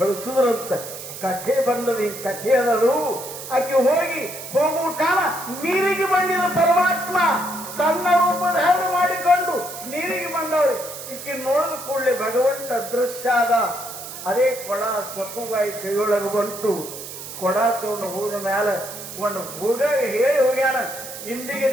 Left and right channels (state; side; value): noise; right; hiss, 11 dB below the sound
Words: ಕಥೆ ಬಂದದ, ಈ ಕಥೆ ಅದದು. ಆಕೆ ಹೋಗುವ ಕಾಲ ನೀರಿಗೆ ಬಂದಿದ ಪರಮಾತ್ಮ ತನ್ನ ರೂಪ ಧಾರಣೆ ಮಾಡಿಕೊಂಡು ನೀರಿಗೆ ಬಂದವ್ರಿ. ಈಕೆ ನೋಡಿದ ಕೂಡಲೇ ಭಗವಂತ ಅದೃಶ್ಯ ಆದ. ಅದೇ ಕೊಡ ಸಕ್ಕುಬಾಯಿ ಕೈಯೊಳಗೆ ಬಂತು. ಕೊಡ ತಗೊಂಡು ಹೋದ ಮ್ಯಾಲ ಒಂದು ಹುಡುಗ ಹೇಳಿ ಹೋಗ್ಯಾನ, ಇಂದಿಗೆ